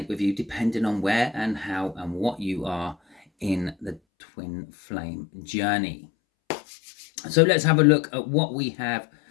with you depending on where and how and what you are in the twin flame journey. So let's have a look at what we have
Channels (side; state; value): right; drops out; at 4.0 s